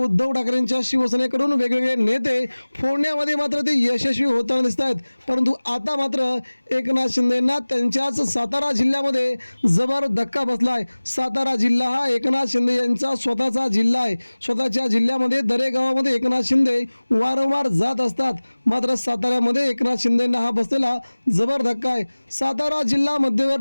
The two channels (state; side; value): inverted; both; correlation -1.00